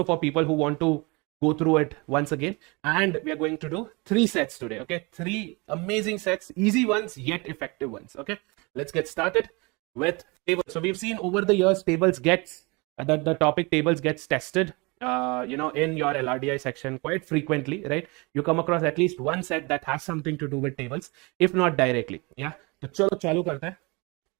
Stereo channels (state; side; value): quieter; left; 27.4 dB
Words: for people who want to go through it once again. And we are going to do 3 sets today, okay? 3 amazing sets, easy ones yet effective ones, okay? Let's get started with tables. So we've seen over the years tables gets the topic tables gets tested in your LRDI section quite frequently, right? You come across at least one set that has something to do with tables, if not directly. Yeah, तो चलो चालू करते हैं.